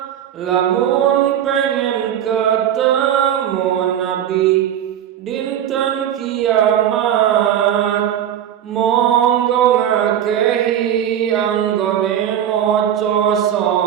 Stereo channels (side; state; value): left; quieter; 10.2 dB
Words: Lamun pengen ketemu Nabi dinten kiamat, monggo ngakehi anggone maca